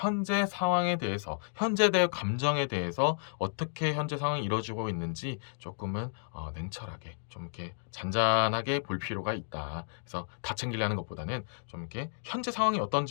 상황에 대해서 현재 의 감정에 대해서 어떻게 현재 상황이 이루어지고 있는지 조금은 냉철하게 좀 이렇게 잔잔하게 볼 필요가 있다. 그래서 다 챙기려는 것보다는 좀 이렇게 현재 상황이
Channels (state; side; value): silent; right; digital silence